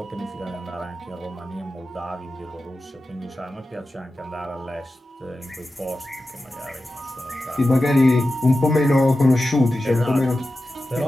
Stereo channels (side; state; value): both; normal; correlation 0.93